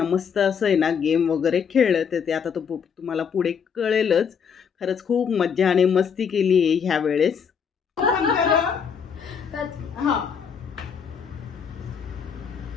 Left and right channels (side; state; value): right; quieter; 6.8 dB